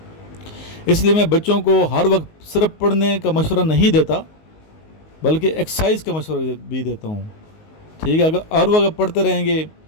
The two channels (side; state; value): right; late; 19 ms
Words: اس لیے میں بچوں کو ہر وقت صرف پڑھنے کا مشورہ نہیں دیتا بلکہ ایکسرسائز کا مشورہ بھی دیتا ہوں، ٹھیک ہے۔ اگر ہر وقت پڑھتے رہیں گے،